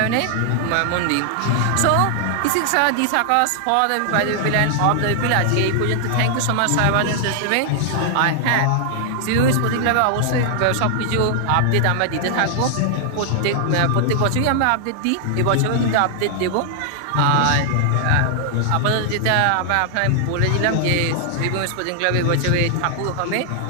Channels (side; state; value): both; different; correlation 0.00